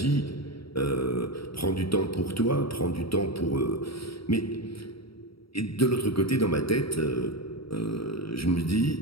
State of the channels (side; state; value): right; late; 0.75 ms